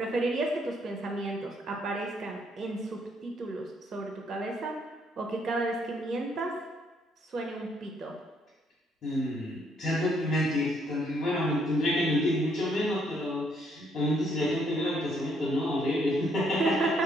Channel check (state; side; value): normal; both; correlation 0.70